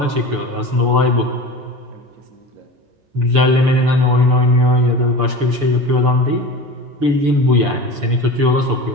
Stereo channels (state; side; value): late; left; 6.9 ms